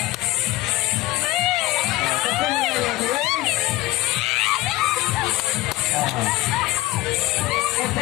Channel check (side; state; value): right; quieter; 18.3 dB